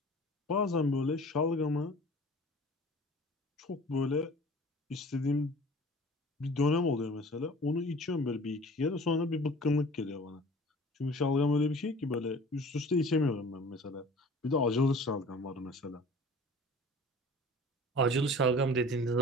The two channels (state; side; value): normal; both; correlation 0.45